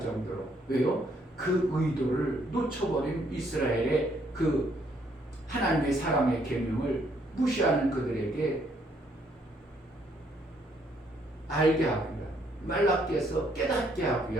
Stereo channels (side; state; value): both; normal; correlation 0.70